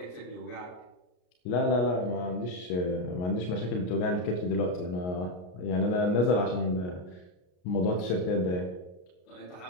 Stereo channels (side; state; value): right; late; 33 ms